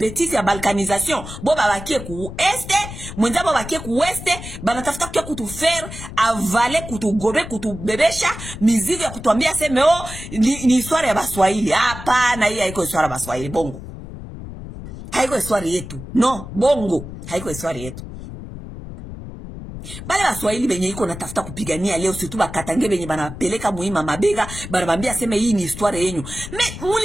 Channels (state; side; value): noise; left; rumble, 11 dB below the sound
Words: ya balkanisation, bon babakie ku este, mwenza babakie ku oueste, banatafuta kia kutu faire avaler, kutu gobe, kutu bebesha, mizigo ya kutuambia seme oh, ni histoire ya baswahili. Hapana, hii haiko histoire ya baswahili, bongo. Haiko histoire yetu. No, bongo. Haiko histoire yetu. Bale baswahili benye iko natafuta kupigania leo, surtout bakatange benye banapeleka muhima mabega, banabambia seme hii ni histoire yenyu. Mais